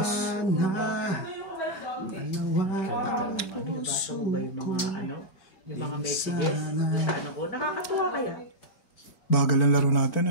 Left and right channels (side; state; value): right; late; 5.3 ms